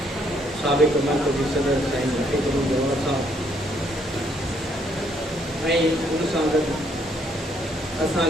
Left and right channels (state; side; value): normal; both; correlation 0.69